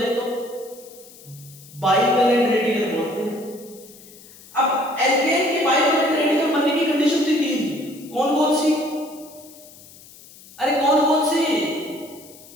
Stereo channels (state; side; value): noise; left; hiss, 21 dB below the sound